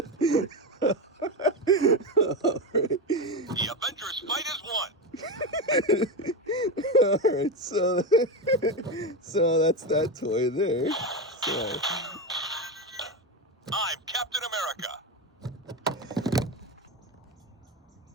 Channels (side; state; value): both; normal; correlation 0.15